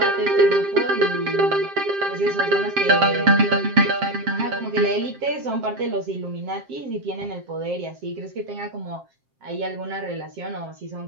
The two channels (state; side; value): late; left; 7.5 ms